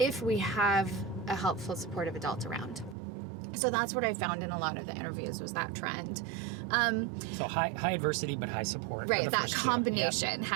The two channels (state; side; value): drops out; left; at 3.0 s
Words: if we have a helpful, supportive adult around. So that's what I found in a lot of the interviews, was that trend. So high adversity, but high support. Right, that combination